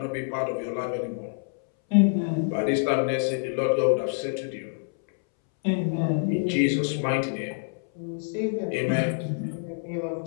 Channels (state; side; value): silent; right; 60 dB below the other